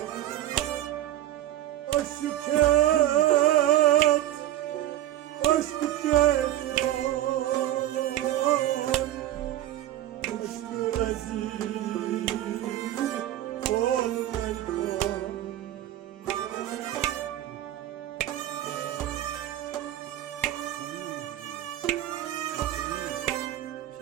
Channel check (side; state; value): left; quieter; 13.3 dB